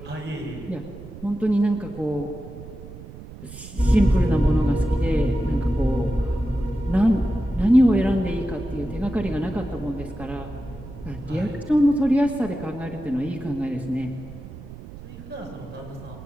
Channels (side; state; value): right; noise; rumble, 15 dB below the sound